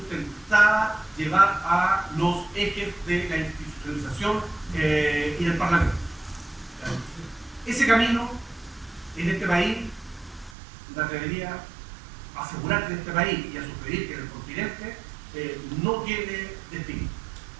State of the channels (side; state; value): left; drops out; at 10.6 s